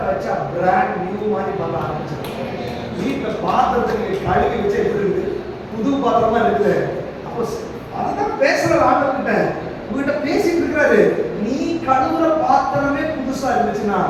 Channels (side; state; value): both; identical; correlation 1.00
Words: வச்சா பிராண்ட் நியூ மாதிரி பண்ண ஆரம்பிச்சாங்க. வீட்டில் பாத்திரத்தை கழுவி வச்சா எப்படி இருக்குது, புது பாத்திரமா இருக்குது. அப்போ அதுதான் பேசுற ஆண்டவர்கிட்ட, உங்ககிட்ட பேசிட்டு இருக்கிறாரு. நீ கழுவுற பாத்திரமே புதுசா இருந்துச்சுன்னா